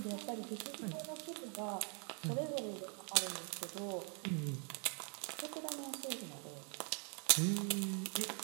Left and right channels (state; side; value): quieter; left; 38.6 dB